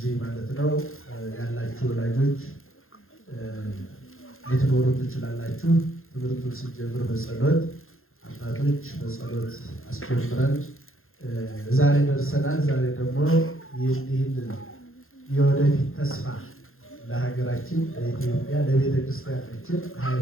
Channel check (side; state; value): right; late; 0.61 ms